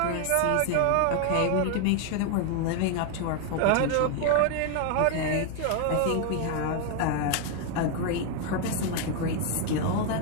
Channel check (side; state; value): both; different; correlation 0.01